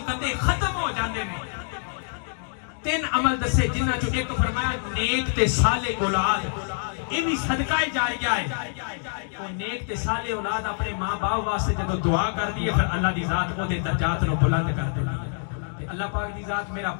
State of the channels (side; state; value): right; silent; digital silence